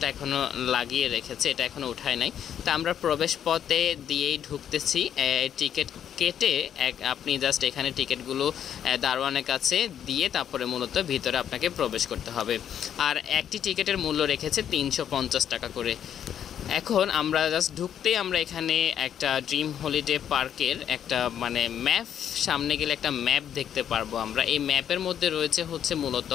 এখনও লাগিয়ে রেখেছে, এটা এখনও উঠায় নাই। তো আমরা প্রবেশ পথে দিয়েই ঢুকতেছি। টিকিট কেটে আপনি জাস্ট এখানে টিকিটগুলো দারোয়ানের কাছে দিয়ে তারপরে মূলত ভিতরে আপনাকে প্রবেশ করতে হবে। আর একটি টিকিটের মূল্য রেখেছে 350 টাকা করে। এখন আমরা জাস্ট ঢুকতেই আমরা এখানে একটা ড্রিম হলিডে পার্কের একটা ম্যাপ, সামনে গেলে একটা ম্যাপ দেখতে পারবো আমরা। এই ম্যাপের মধ্যে রয়েছে মূলত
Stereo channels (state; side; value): quieter; right; 9.4 dB